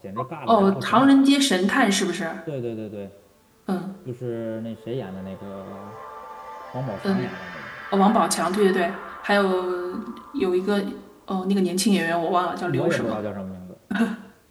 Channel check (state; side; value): identical; both; correlation 1.00